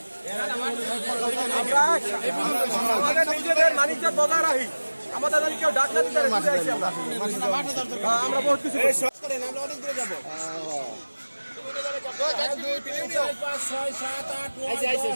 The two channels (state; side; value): inverted; both; correlation -1.00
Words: আমাদের নিজেদের মানিকটা বজায় রাখি, আমাদের যদি কেউ ডাক না দিতে আমরা বহুত কিছু আমরা অনেক দূরে যাবো।